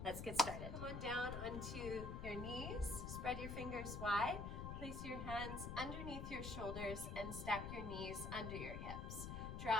Let's get started. Come on down onto your knees, spread your fingers wide, place your hands underneath your shoulders and stack your knees under your hips.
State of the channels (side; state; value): left; noise; rumble, 5 dB below the sound